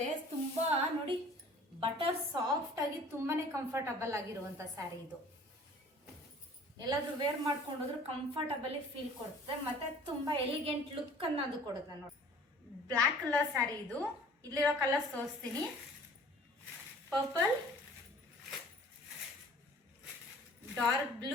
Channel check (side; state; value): both; normal; correlation 0.49